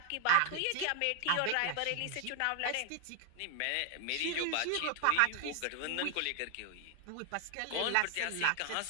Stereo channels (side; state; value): both; different; correlation 0.00